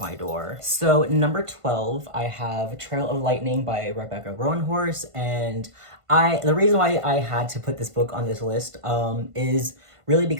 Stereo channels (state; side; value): late; left; 1.5 ms